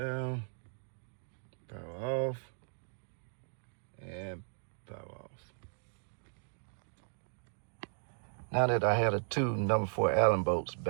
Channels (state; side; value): silent; left; digital silence